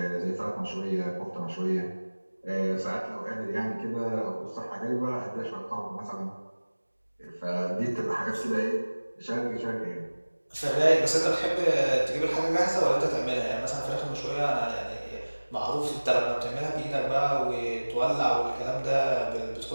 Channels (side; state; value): both; inverted; correlation -1.00